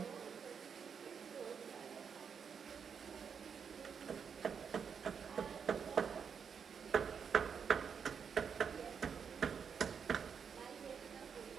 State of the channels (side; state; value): left; quieter; 6.7 dB